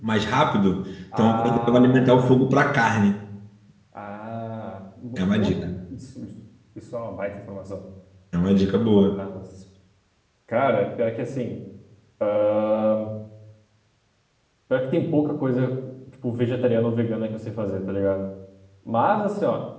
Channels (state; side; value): identical; both; correlation 1.00